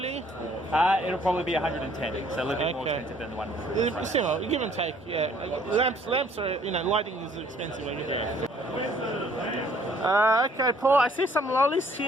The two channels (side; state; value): both; normal; correlation 0.60